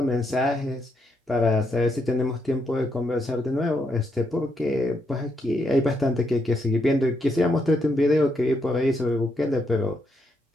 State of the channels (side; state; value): both; normal; correlation 0.79